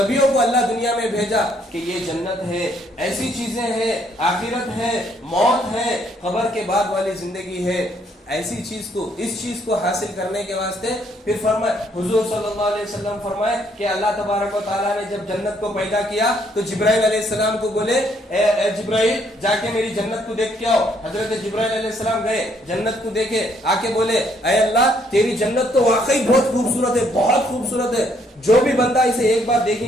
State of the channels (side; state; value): both; normal; correlation 0.68